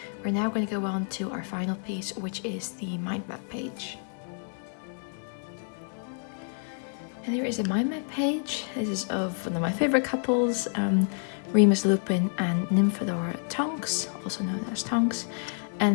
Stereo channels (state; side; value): silent; right; 59 dB below the other